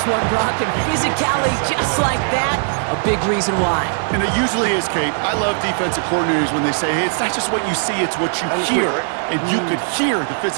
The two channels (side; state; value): left; silent; digital silence